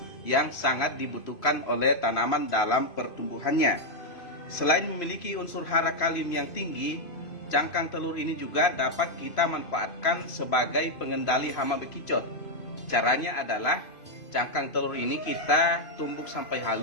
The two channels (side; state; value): right; late; 2.5 ms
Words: yang sangat dibutuhkan oleh tanaman dalam pertumbuhannya. Selain memiliki unsur hara kalium yang tinggi, cangkang telur ini juga dapat kita manfaatkan sebagai pengendali hama bekicot. Caranya adalah cangkang telur ini kita tumbuk sampai